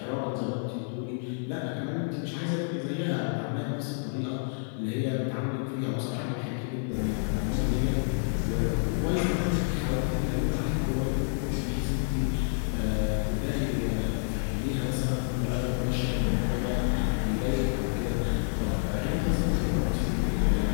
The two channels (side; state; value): right; silent; digital silence